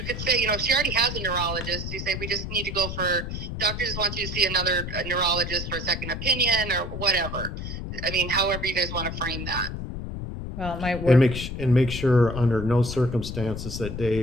say, if she already has a neurologist, you say, we just need to go doctor just wants you to see another neurologist for a second opinion or whatever. I mean, however you guys want to frame that. Well, it might work. And make sure under no circumstances that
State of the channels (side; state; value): left; noise; rumble, 6 dB below the sound